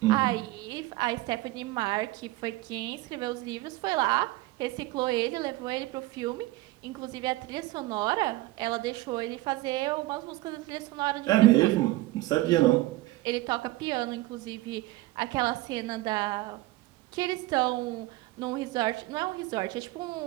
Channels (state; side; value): quieter; left; 18.8 dB